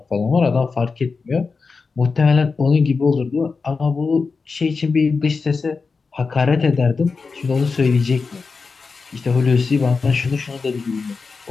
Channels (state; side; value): quieter; right; 4.6 dB